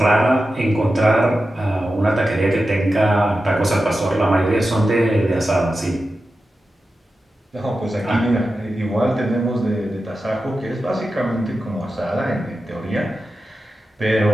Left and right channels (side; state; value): both; normal; correlation 0.92